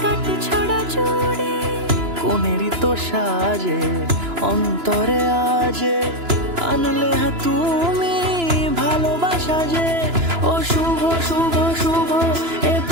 কাট ছড়া জুড়ে। কোনেরই তো সাজে অন্তরে আজে, আনলে হ্যাঁ তুমি ভালোবাসা যে। ও শুভ শুভ শুভ এ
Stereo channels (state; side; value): late; left; 2.9 ms